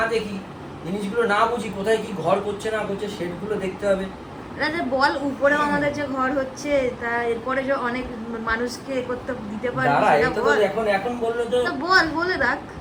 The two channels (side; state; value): both; identical; correlation 1.00